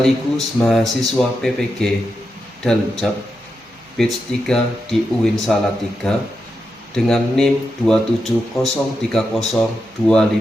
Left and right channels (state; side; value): normal; both; correlation 0.87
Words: mahasiswa PPG Daljab batch 3 di UIN Salatiga dengan NIM